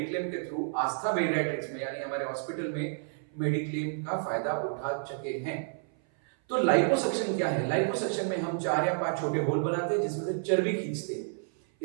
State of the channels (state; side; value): silent; left; 56 dB below the other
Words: के थ्रू आस्था बेरियाट्रिक्स में यानी हमारे हॉस्पिटल में मेडिक्लेम का फायदा उठा चुके हैं। तो लाइपोसक्शन क्या है? लाइपोसक्शन में हम 4 या 5 छोटे होल बनाते हैं जिसमें से चर्बी खींचते हैं।